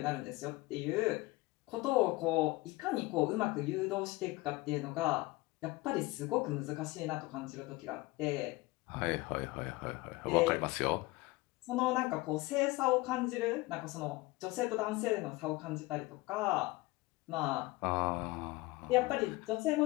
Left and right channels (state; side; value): quieter; right; 21.5 dB